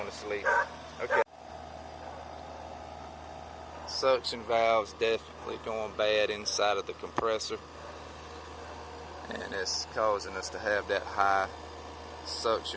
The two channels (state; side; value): identical; both; correlation 1.00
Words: to sleep. Okay. Suction valves definitely going bad inside of the compressor, and it's causing us to have that high